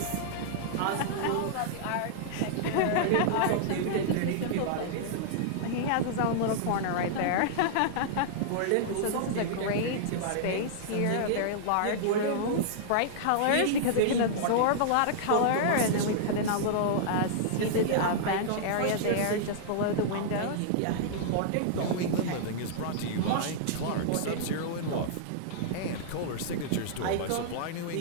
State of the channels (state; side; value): different; both; correlation -0.02